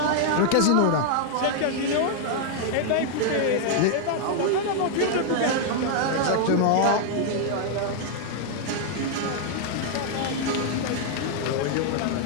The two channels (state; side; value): different; both; correlation 0.00